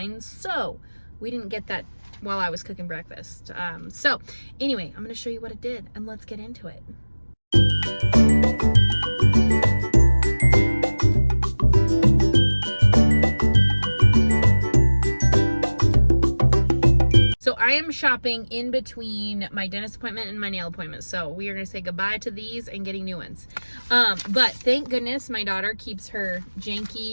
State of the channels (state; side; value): inverted; both; correlation -1.00